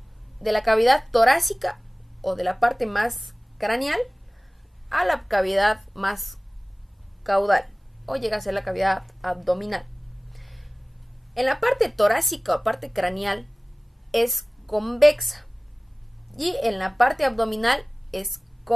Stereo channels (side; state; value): both; normal; correlation 0.98